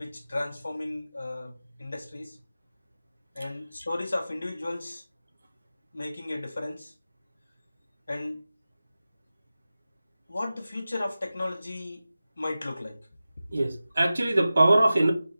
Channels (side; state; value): both; inverted; correlation -0.95